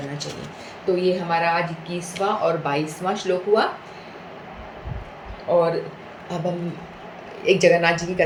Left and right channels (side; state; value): both; identical; correlation 1.00